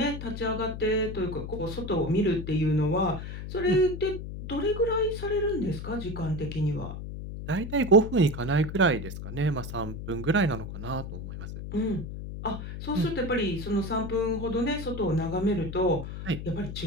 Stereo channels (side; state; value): left; noise; hum, 8 dB below the sound